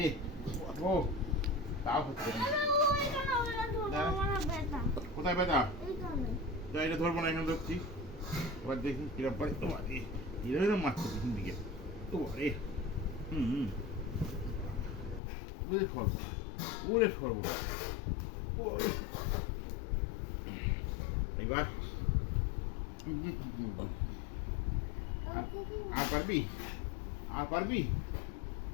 কোথায় ব্যথা? এটা ধরবো না, এখানে ধরছি। এবার দেখি কিরম পারে। তোমার এরকম মারছে পিছন দিকে। তোমারে ওরে সর্বনা, ওরে সর্বনা। এবার আর পারবি? আর পারবি?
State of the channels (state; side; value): drops out; right; at 15.2 s